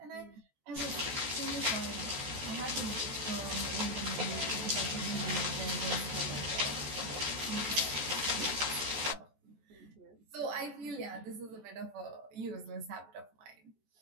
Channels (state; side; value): late; left; 14 ms